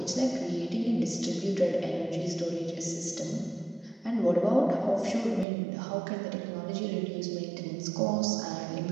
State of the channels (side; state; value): left; drops out; at 5.5 s